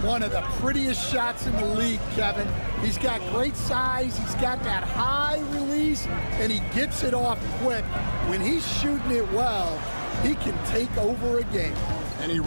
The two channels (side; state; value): both; inverted; correlation -1.00